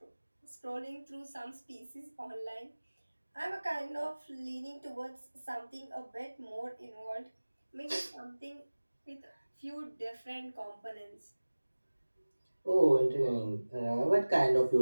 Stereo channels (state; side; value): inverted; both; correlation -1.00